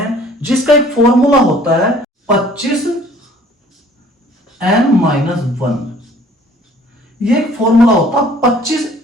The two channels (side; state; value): both; normal; correlation 0.54